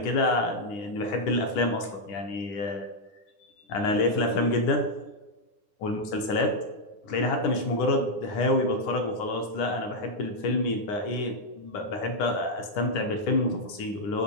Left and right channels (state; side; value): late; right; 9.7 ms